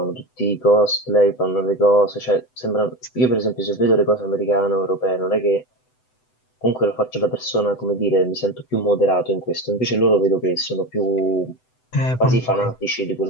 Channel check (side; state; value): right; late; 7.9 ms